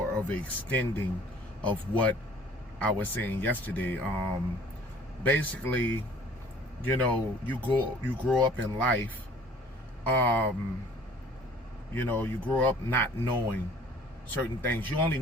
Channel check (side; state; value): both; normal; correlation 0.52